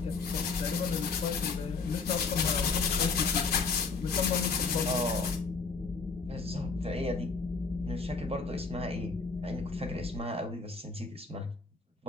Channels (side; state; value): right; quieter; 4.5 dB